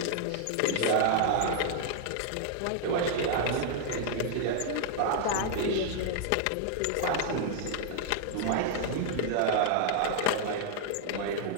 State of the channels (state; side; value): different; both; correlation -0.01